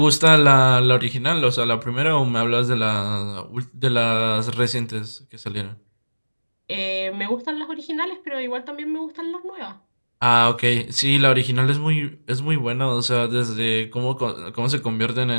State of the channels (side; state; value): both; inverted; correlation -1.00